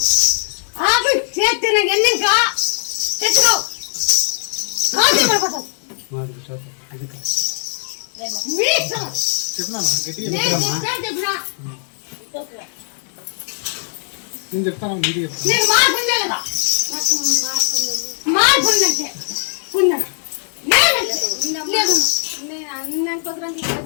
ఆపి చేతిన ఎన్నిక తెచ్చుకో కాదు పడిపోతావు చెప్పినాను నేను చెప్తాను మీరు చెప్తాను నీకు మార్పు ఉందా లేదా మార్పు ఉందంటే ఉందా లేదు నేను అన్న కుదరని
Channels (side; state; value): right; silent; 66 dB below the other